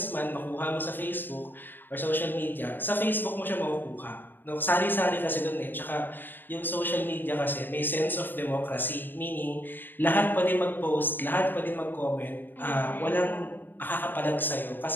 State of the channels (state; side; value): late; right; 0.093 ms